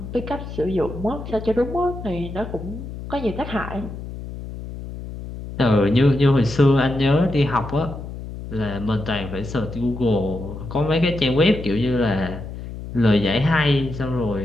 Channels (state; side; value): noise; left; hum, 10 dB below the sound